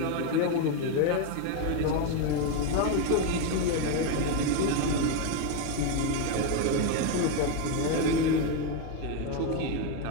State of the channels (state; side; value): different; both; correlation 0.02